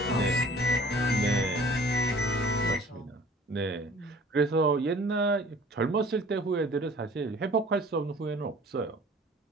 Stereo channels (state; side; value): normal; both; correlation 0.49